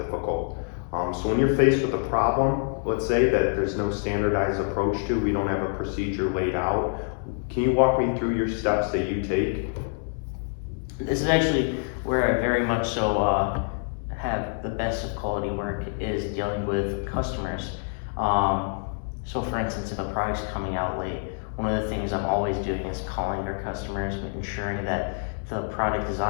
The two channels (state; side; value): silent; right; 61 dB below the other